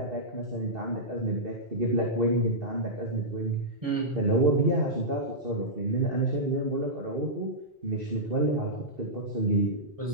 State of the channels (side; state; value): both; normal; correlation -0.12